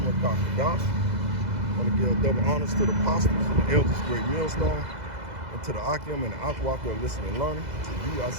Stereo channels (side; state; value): left; late; 2.0 ms